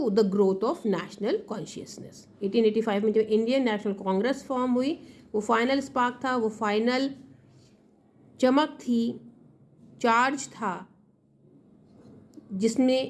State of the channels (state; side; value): identical; both; correlation 1.00